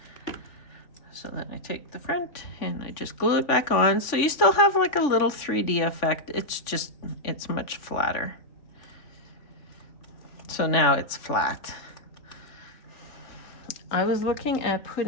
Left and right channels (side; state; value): right; late; 3.5 ms